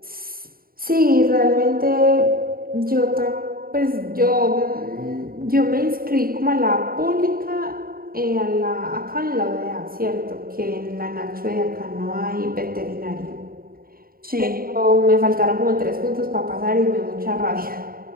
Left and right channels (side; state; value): left; late; 0.43 ms